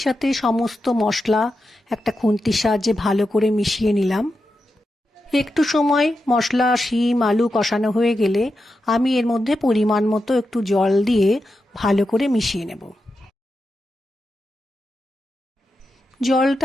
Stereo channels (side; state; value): both; normal; correlation 0.89